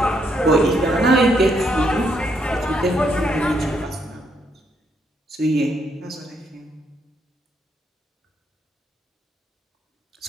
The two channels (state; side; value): normal; both; correlation 0.75